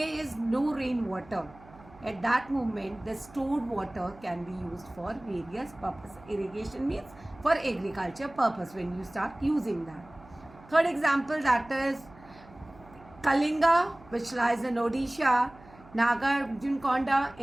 is no rainwater, at that moment the stored water can be used for various purposes. Irrigation means for agriculture purpose when you start using that. Third example, that is Kalinga, which lies in Odisha, Nagarjunakonda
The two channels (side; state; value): right; noise; hum, 23 dB below the sound